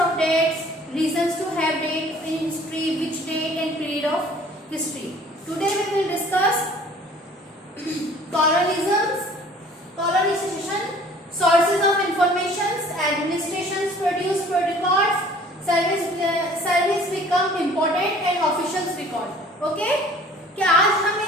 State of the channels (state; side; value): normal; both; correlation 0.52